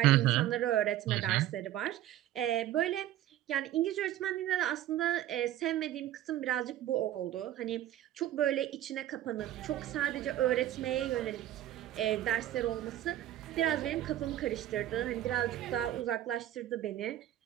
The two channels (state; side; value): quieter; left; 13.1 dB